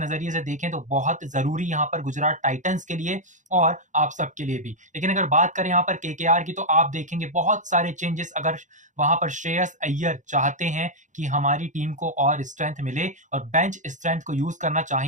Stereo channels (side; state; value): left; late; 0.36 ms